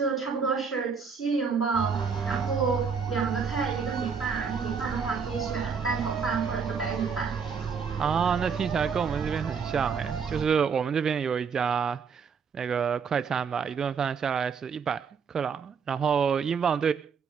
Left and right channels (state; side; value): quieter; left; 6.0 dB